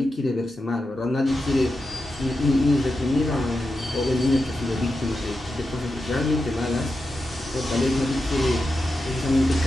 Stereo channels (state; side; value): normal; both; correlation 0.89